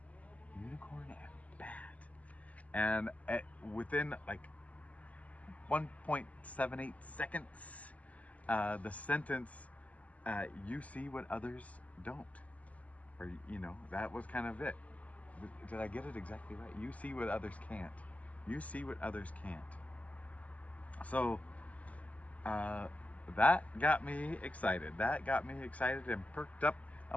Unicorn and bat. And within like 1.78 seconds, the sentence, you see what others don't. Or, that was kind of it. Did I get it exactly right? You see what others can't. You see what others can't. So, that got me excited. That got me excited and perked up.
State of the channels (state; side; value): late; right; 0.072 ms